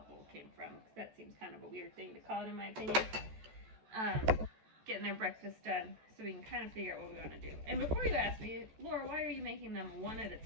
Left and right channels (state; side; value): late; left; 14 ms